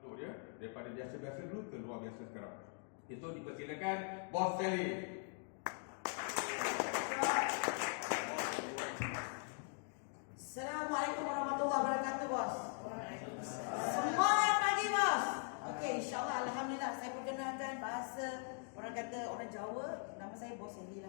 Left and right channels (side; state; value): right; silent; 50 dB below the other